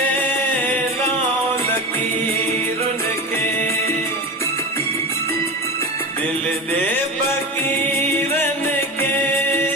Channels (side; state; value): both; normal; correlation 0.27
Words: लाओ लकीरुन के दिल दे फकीरन के